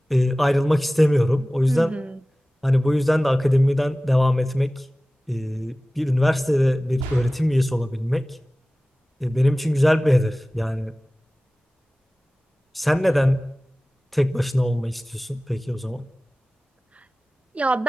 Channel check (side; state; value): both; normal; correlation 0.98